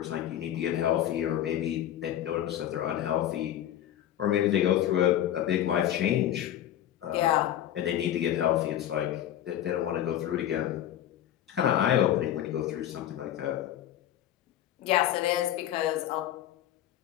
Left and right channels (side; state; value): right; quieter; 11.6 dB